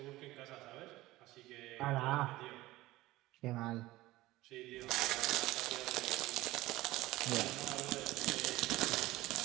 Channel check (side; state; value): left; quieter; 17.9 dB